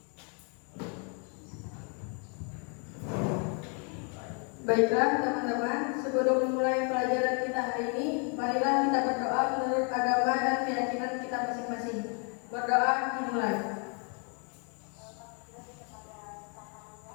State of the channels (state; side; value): quieter; right; 38.7 dB